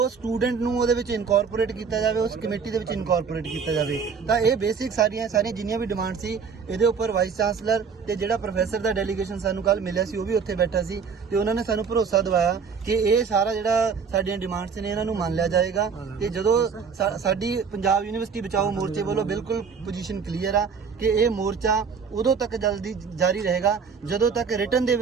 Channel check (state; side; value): quieter; left; 5.9 dB